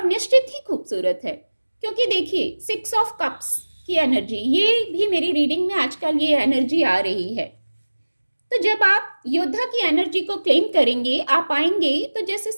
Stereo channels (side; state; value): both; inverted; correlation -1.00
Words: निश्चित ही खूबसूरत है। क्योंकि देखिए 6 ऑफ कप्स की एनर्जी, ये भी मेरी रीडिंग में आजकल ये एनर्जी आ रही है। तो जब आप योद्धा की एनर्जी को क्लेम करेंगे, आप आएंगे, तो जैसे